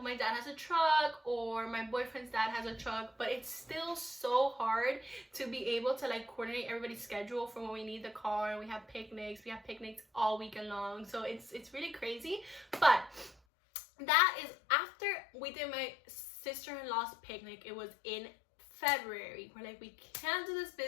my dad has a truck, or my boyfriend's dad has a truck, but it's still so hard to be able to like coordinate everybody's schedule for when we need the car. We have picnics all weekend long, so it's really crazy. But that is after we did my sister-in-law's picnic. It was in February. We're like, we can't do this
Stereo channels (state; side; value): drops out; right; at 13.4 s